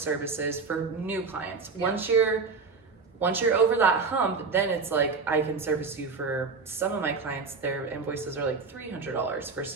for new clients. Yeah. Once you're over that hump, then it's like I can service you for some of my clients. Their invoices are like $300 for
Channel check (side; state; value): left; quieter; 4.8 dB